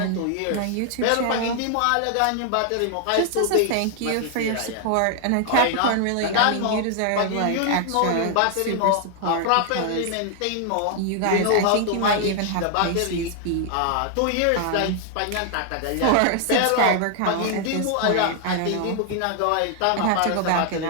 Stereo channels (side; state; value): both; different; correlation 0.00